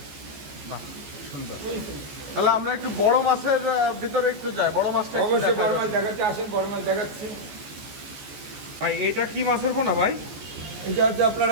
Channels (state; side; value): late; left; 14 ms